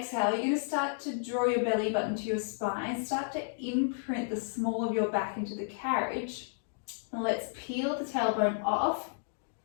you're going to start to draw your belly button to your spine. Start to imprint the small of your back into the carriage. And let's peel the tailbone off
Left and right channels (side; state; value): right; silent; digital silence